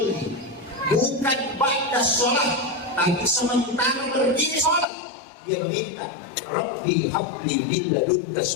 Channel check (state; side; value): drops out; right; at 4.9 s